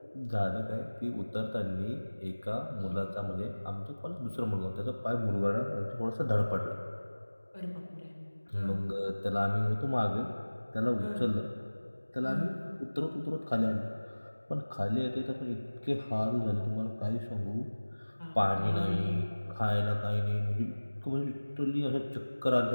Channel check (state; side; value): inverted; both; correlation -1.00